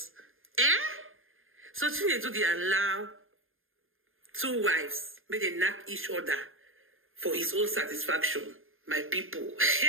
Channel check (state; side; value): late; left; 0.60 ms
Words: So Chinedu, they allow two wives, may they knock each other for his own satisfaction. My people.